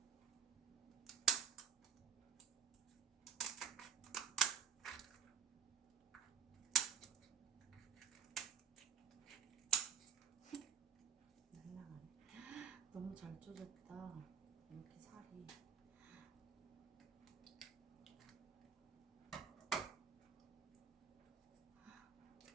너무 잘 쪼졌다. 이렇게 살이.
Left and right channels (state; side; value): quieter; left; 7.1 dB